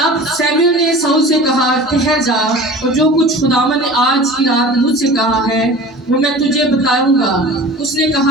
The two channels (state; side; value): normal; both; correlation 0.39